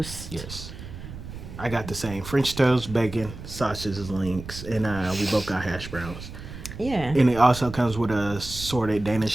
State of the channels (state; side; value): noise; right; rumble, 12 dB below the sound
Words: Yes. I got the same French toast, bacon, sausages, links, and we both got hash browns. Yeah. And it also comes with assorted